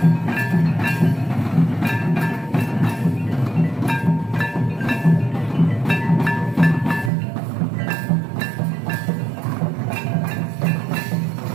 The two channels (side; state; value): left; drops out; at 7.1 s